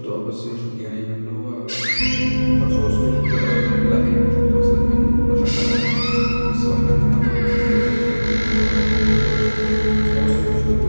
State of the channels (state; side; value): inverted; both; correlation -1.00